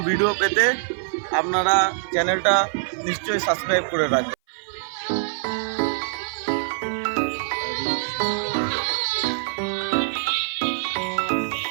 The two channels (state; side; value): silent; left; 57 dB below the other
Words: ভিডিও পেতে আপনারা চ্যানেলটা নিশ্চয়ই সাবস্ক্রাইব করে রাখবেন।